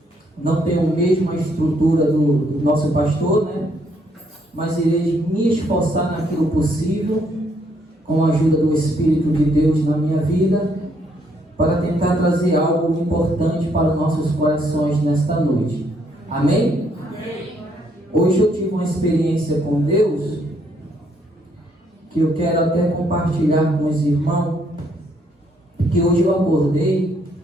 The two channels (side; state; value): both; normal; correlation 0.71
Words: não tenho a mesma estrutura do nosso pastor, mas irei me esforçar naquilo possível, com a ajuda do Espírito de Deus na minha vida, para tentar trazer algo importante para os nossos corações nesta noite. Amém? Amém. Hoje eu tive uma experiência com Deus, que eu quero até compartilhar com os irmãos, que hoje eu acordei,